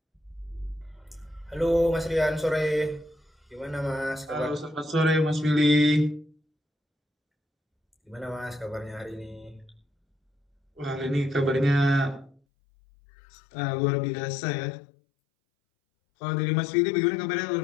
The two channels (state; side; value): drops out; right; at 12.4 s